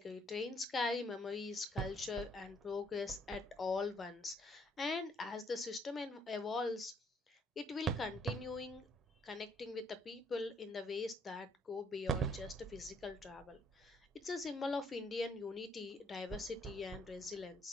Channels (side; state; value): both; normal; correlation 0.67